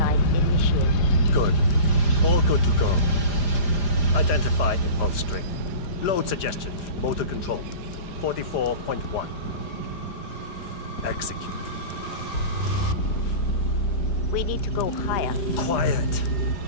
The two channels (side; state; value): right; late; 5.0 ms